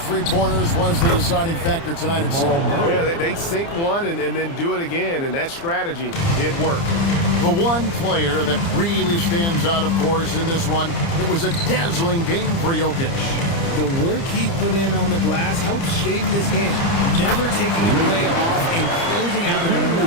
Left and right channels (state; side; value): late; right; 30 ms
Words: three-pointers was the deciding factor tonight at Seoul. Yeah, they sink one and then do it again, and that strategy did work. The one player that really stands out, of course, in this one, it was a dazzling game for Jokic. The work he put in on the glass helped shape this game, never taking a play off and closing out a